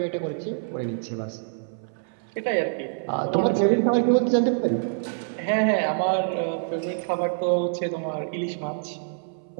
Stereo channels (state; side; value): silent; left; 61 dB below the other